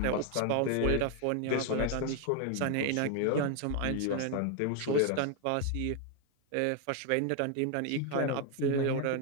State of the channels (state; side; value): different; both; correlation 0.01